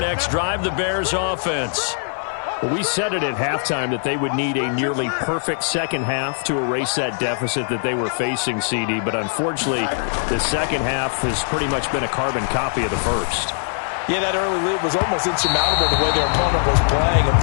drive, the Bears offense. We said it at halftime that they would need a nearly perfect second half to erase that deficit that they were facing, CD. But unfortunately, the second half has pretty much been a carbon copy of the first. Yeah, that early lead was almost insurmountable the way their opponent was playing. And,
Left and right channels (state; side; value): silent; right; digital silence